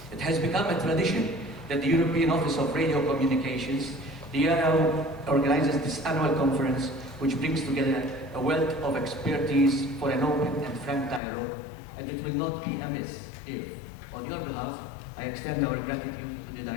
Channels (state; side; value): drops out; right; at 11.2 s